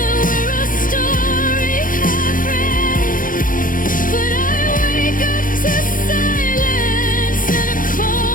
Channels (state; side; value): late; right; 0.40 ms